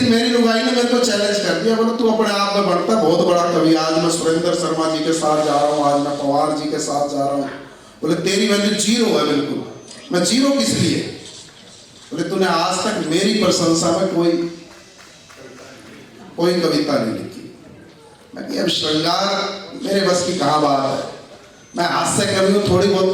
मेरी लुगाई ने मेरे को चैलेंज कर दिया, बोला तू अपने आप में बढ़ता बहुत बड़ा कवि, आज मैं सुरेंद्र शर्मा जी के साथ जा रहा हूँ, आज मैं पवार जी के साथ जा रहा हूँ। बोले तेरी वैल्यू जीरो है बिल्कुल। मैं जीरो किस लिए? बोले तूने आज तक मेरी प्रशंसा में कोई कविता नहीं लिखी। मैं कि अब श्रृंगार मेरे बस की कहाँ बात है, मैं हास्य कवि हूँ, थोड़ी बहुत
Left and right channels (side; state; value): both; identical; correlation 1.00